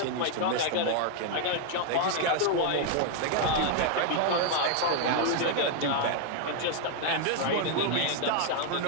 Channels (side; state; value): both; different; correlation 0.00